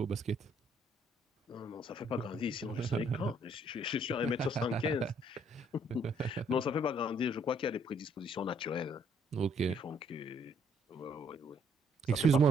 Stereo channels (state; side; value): normal; both; correlation 0.66